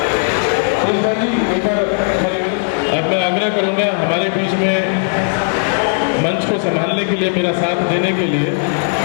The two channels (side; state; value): right; silent; 69 dB below the other